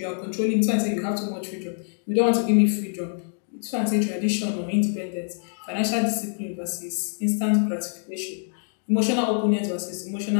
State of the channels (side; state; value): right; silent; 62 dB below the other